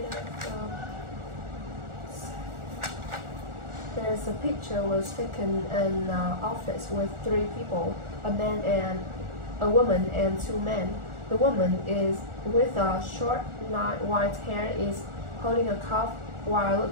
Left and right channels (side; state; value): left; late; 1.4 ms